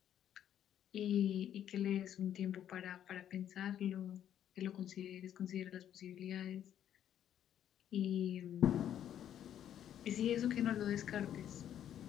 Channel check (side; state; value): right; quieter; 10.4 dB